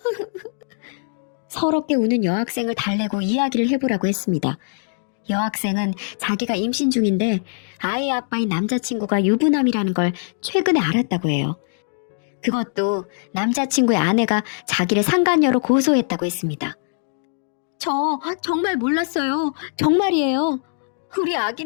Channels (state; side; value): silent; right; digital silence